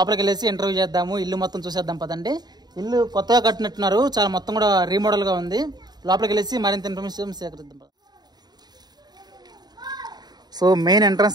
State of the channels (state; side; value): late; left; 0.20 ms